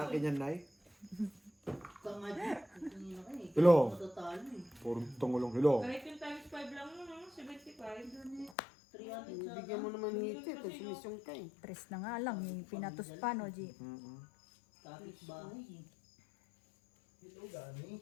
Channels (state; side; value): drops out; right; at 8.6 s